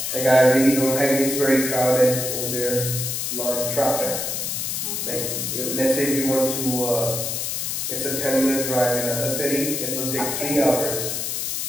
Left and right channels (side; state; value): left; noise; hiss, 2 dB below the sound